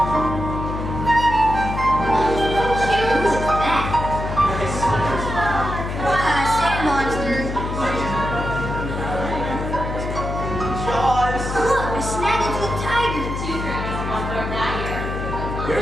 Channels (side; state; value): left; noise; hum, 4 dB below the sound